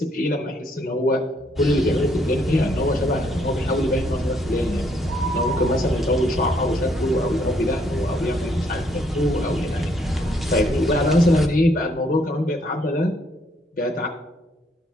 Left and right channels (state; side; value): normal; both; correlation 0.69